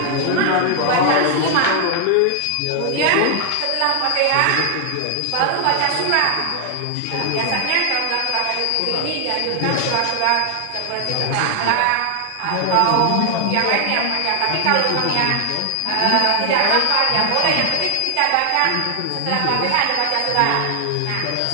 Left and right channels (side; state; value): both; different; correlation 0.00